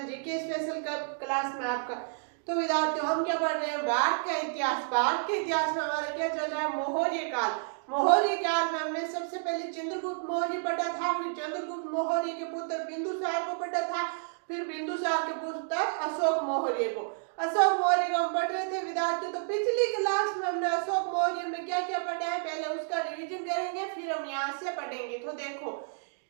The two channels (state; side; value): silent; left; digital silence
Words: GK special class में आपका। तो विद्यार्थियों, हम क्या पढ़ रहे हैं? भारत का इतिहास। भारत के इतिहास में हमारा क्या चल रहा है? मौर्य काल। मौर्य काल में हमने सबसे पहले चंद्रगुप्त मौर्य पढ़ा था, फिर चंद्रगुप्त मौर्य के पुत्र बिंदुसार को पढ़ा था, फिर बिंदुसार के पुत्र अशोक मौर्य को। अशोक मौर्य को हम पढ़ रहे थे विद्यार्थियों। तो पिछली क्लास में हमने अशोक मौर्य में क्या क्या पढ़ा है, पहले उसका रिवीजन करेंगे, फिर हम यहाँ से पढ़ेंगे। तो देखो,